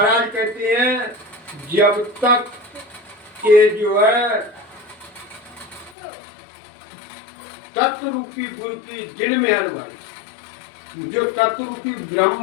कहते हैं जब तक ये जो है तत्व रूपी गुरु की दिल में हरवाई, जो तत्व रूपी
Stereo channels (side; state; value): right; drops out; at 6.0 s